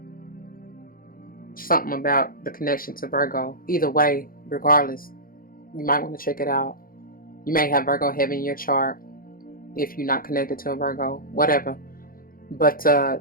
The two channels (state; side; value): late; right; 0.42 ms